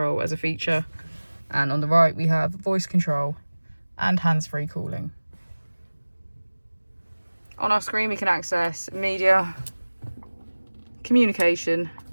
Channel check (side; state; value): both; inverted; correlation -1.00